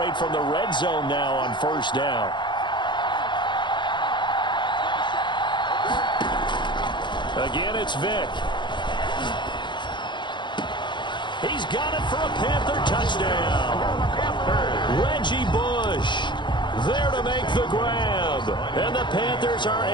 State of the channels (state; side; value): late; right; 0.23 ms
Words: from the red zone now on first down. Again, it's Vick. He's got it for a Panther touchdown. Reggie Bush there to make the grab. And the Panthers are